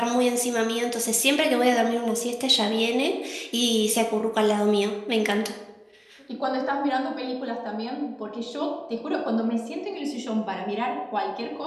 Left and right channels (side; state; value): both; identical; correlation 1.00